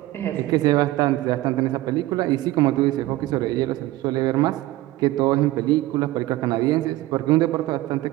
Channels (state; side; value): quieter; left; 17.2 dB